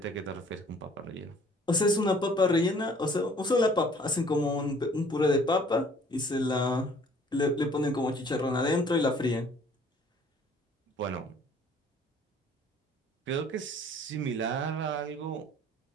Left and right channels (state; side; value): normal; both; correlation 0.56